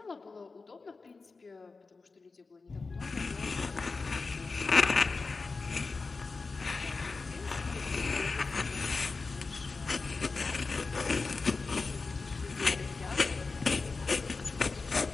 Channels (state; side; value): quieter; right; 4.1 dB